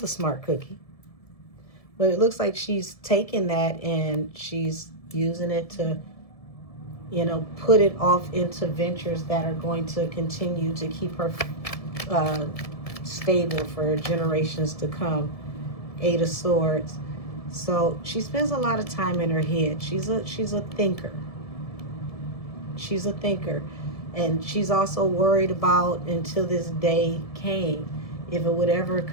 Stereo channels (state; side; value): late; right; 1.7 ms